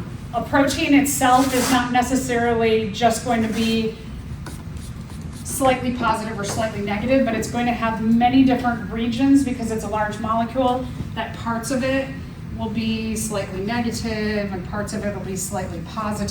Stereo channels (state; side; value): identical; both; correlation 1.00